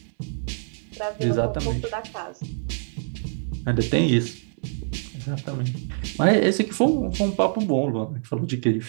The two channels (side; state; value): left; silent; 60 dB below the other